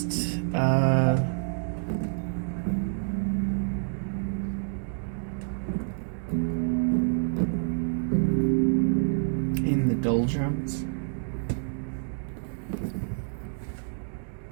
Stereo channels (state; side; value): silent; left; digital silence